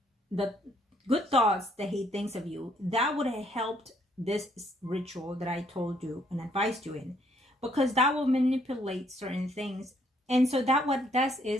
the good thoughts that he thinks of you. That would have helped this ritual that I told you and advised you in, because that will manipulate certain things. And so that what does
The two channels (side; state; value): both; normal; correlation 0.68